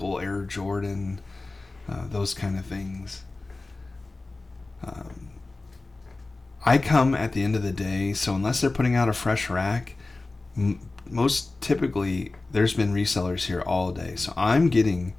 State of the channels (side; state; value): right; quieter; 3.3 dB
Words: Air Jordan, those kind of things. I come at the end of the day, so unless they're putting out a fresh rack, most typically there's been resellers here all day, so I'm getting